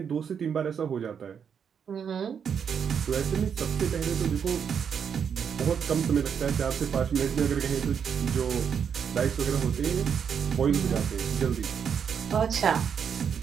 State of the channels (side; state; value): left; quieter; 7.3 dB